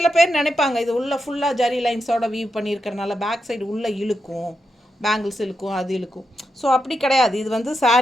பேர் நினைப்பாங்க இது உள்ள ஃபுல்லாக ஜெரி லைன்ஸோட வீவ் பண்ணியிருக்கிறனால பேக் சைடு உள்ளே இழுக்கும், பேங்கிள்ஸ் இழுக்கும், அது இழுக்கும். ஸோ அப்படி கிடையாது, இது வந்து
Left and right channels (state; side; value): normal; both; correlation 0.86